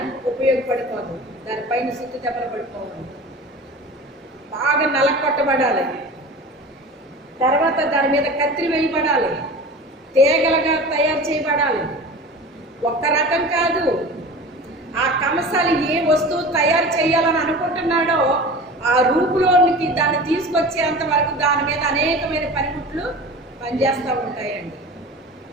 ఉపయోగపడిపోదు, దానిపైన సుత్తి దెబ్బలు పడిపోవడం. బాగా నలకొట్టబడాలి, తర్వాత దాని మీద కత్తి వేయబడాలి, తీగలుగా తయారు చేయబడాలి. ఒక్క రకం కాదు. ఆ కంసాలి ఏ వస్తువు తయారు చేయాలని అనుకుంటున్నాడో ఆ రూపులోనికి దాన్ని తీసుకొచ్చేంత వరకు దాని మీద అనేకమైన పనిముట్లు పనిచేస్తూ ఉంటాయండి.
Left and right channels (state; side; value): normal; both; correlation 0.35